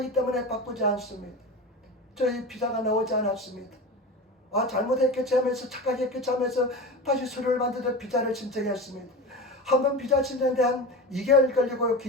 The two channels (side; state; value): both; normal; correlation 0.27